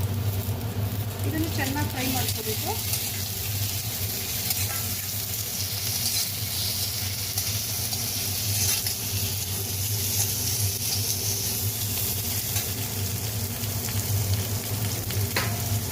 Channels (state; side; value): identical; both; correlation 1.00